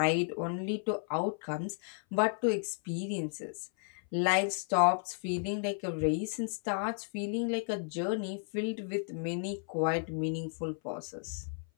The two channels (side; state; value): right; silent; 55 dB below the other